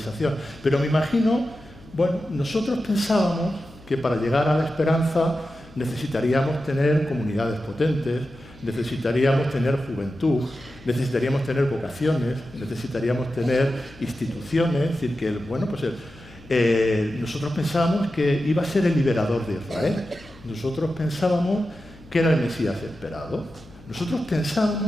pero me imagino, bueno, nosotros pensábamos que para llegar a la esperanza necesitaríamos tener comunidades potentes, necesitaríamos tener juventud, necesitaríamos tener vocaciones, necesitaríamos tener instituciones, es decir, que, bueno, pues nosotros pensábamos que iba a ser el liberador de Israel, nosotros pensábamos que era el Mesías esperado, nosotros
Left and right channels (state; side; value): noise; left; hum, 22 dB below the sound